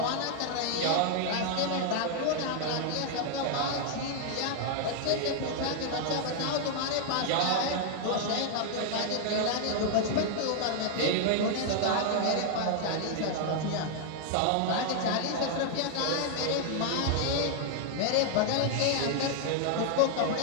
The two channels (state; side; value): different; both; correlation 0.00